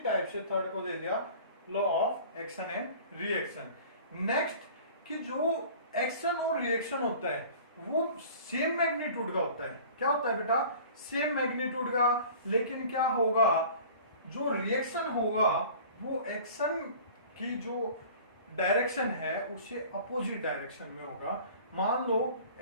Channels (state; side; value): inverted; both; correlation -0.45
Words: से थर्ड को दे दिया law of action and reaction. Next कि जो एक्शन और रिएक्शन होता है वो सेम मैग्नीट्यूड का होता है। क्या होता है बेटा? सेम मैग्नीट्यूड का। लेकिन क्या होगा? जो रिएक्शन होगा वो एक्शन की जो डायरेक्शन है उससे अपोजिट डायरेक्शन में होगा। मान लो